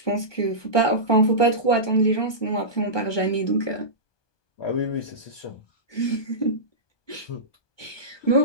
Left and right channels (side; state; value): right; late; 1.2 ms